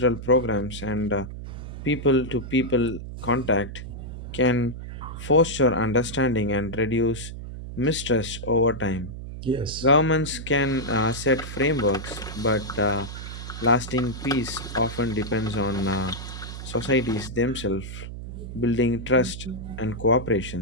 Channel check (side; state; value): right; noise; hum, 9 dB below the sound